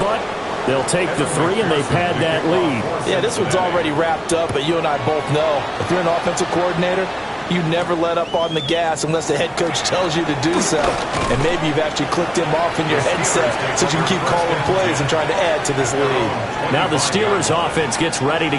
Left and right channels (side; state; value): both; identical; correlation 1.00